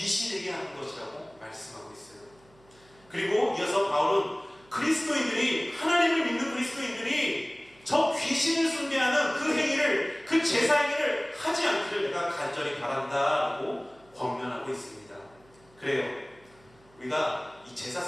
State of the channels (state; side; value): noise; right; hum, 29 dB below the sound